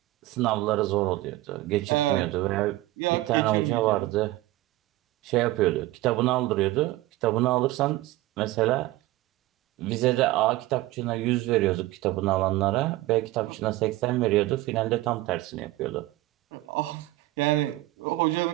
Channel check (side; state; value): left; quieter; 17.7 dB